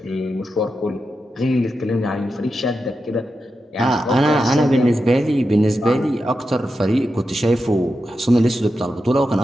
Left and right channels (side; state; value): both; normal; correlation 0.89